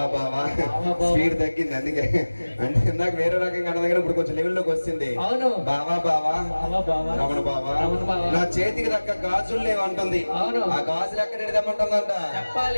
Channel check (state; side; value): inverted; both; correlation -1.00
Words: బావా స్పీడ్ తగ్గింది అందుకే. అంటే ఇందాక వేరే రకంగా అన్న దగ్గర ఇప్పుడు కొంచెం లెవెల్లోకి వచ్చింది. బావా బావా రమణ బావా నా చేతికి దక్క గాజులు లేవంటుంది. ఆ గాజులు ఎక్కడ తెమ్మంటుందంట?